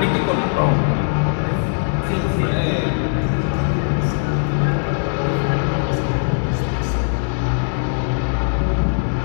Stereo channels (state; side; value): silent; right; digital silence